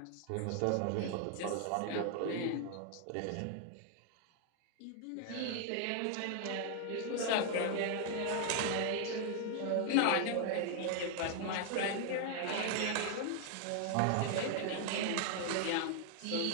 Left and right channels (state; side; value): different; both; correlation 0.00